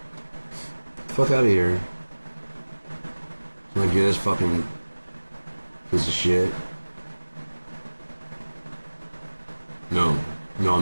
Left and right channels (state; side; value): inverted; both; correlation -1.00